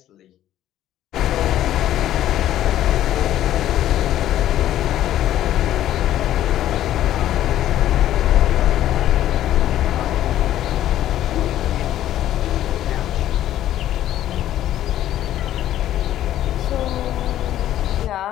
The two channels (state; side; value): quieter; right; 12.5 dB